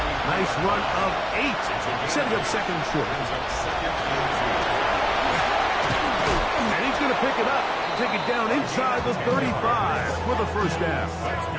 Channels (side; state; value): both; identical; correlation 1.00